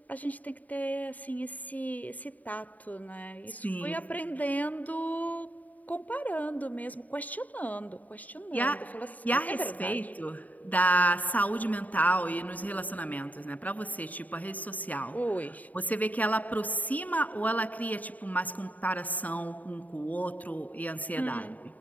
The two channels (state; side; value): late; right; 0.075 ms